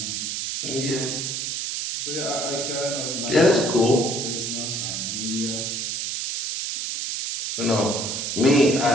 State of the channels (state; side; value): noise; right; hiss, 3 dB below the sound